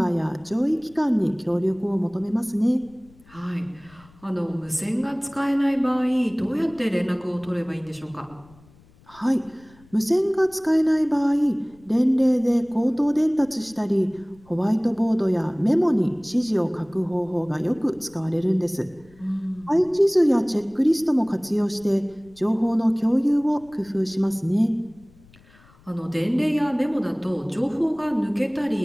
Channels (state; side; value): noise; left; rumble, 27 dB below the sound